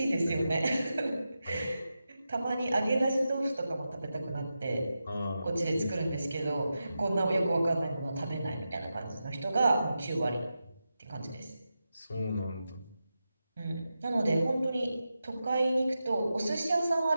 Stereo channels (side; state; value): both; inverted; correlation -0.90